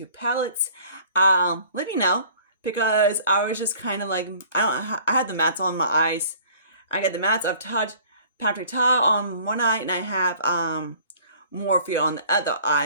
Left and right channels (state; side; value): inverted; both; correlation -0.51